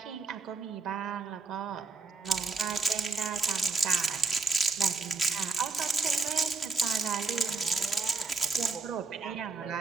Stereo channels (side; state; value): left; quieter; 4.1 dB